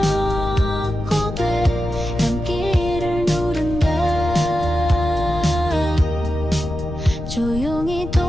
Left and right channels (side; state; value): left; noise; rumble, 9 dB below the sound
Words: 되감기를 누른다. 조용히